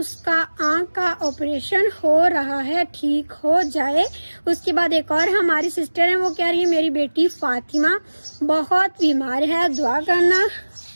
आँख का ऑपरेशन हो रहा है, ठीक हो जाए। उसके बाद एक और हमारी सिस्टर हैं, वो कह रही है मेरी बेटी फातिमा बहुत बीमार है, दुआ करना।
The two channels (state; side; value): inverted; both; correlation -1.00